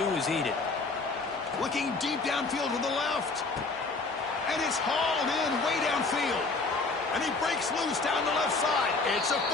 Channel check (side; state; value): right; quieter; 3.8 dB